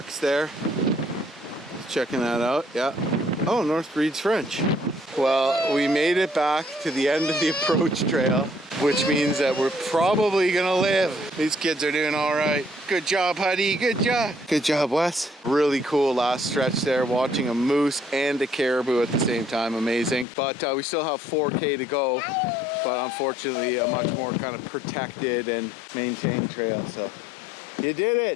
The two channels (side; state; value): right; drops out; at 20.2 s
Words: there. Checking that out, yeah. Oh, North reads French. Well, we made it back to the end of the approach trail, which means that we're probably gonna live. These kids are doing all right. Good job, Huddy, good job. Good job, Wes. Really cool last stretch there, watching a moose and a caribou at the same time, amazing. But we still have 4K to go, but unfortunately a much more kind of protected and maintained trail, so you did